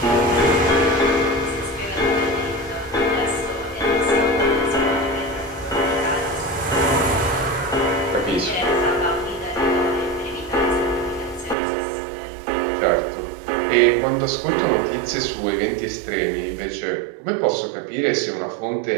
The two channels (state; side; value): drops out; left; at 11.6 s